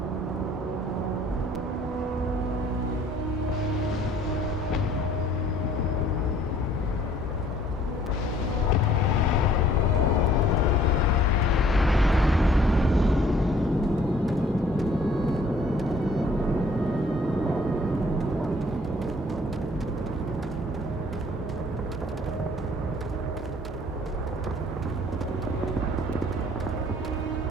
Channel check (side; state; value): both; normal; correlation 0.58